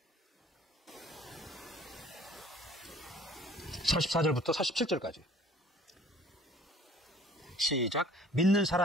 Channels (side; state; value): both; normal; correlation 0.52